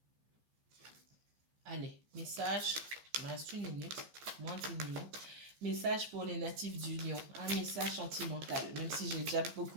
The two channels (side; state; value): left; late; 15 ms